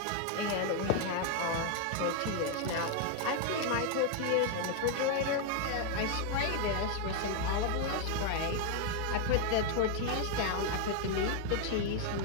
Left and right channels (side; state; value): both; different; correlation 0.01